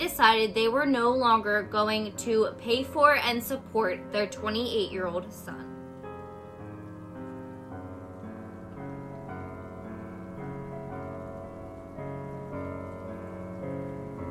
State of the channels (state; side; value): identical; both; correlation 1.00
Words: they were no longer going to pay for and support their 28-year-old son.